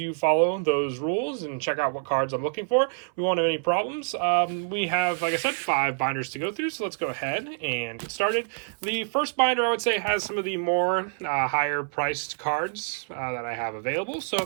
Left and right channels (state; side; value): silent; left; 60 dB below the other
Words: follow those rules and check out what cards I'm looking for, we won't have any problems. We have, like I said, 5 binders to go through, so let's go ahead and get started. The first binder, I would say, has some of the more higher priced cards that I have available.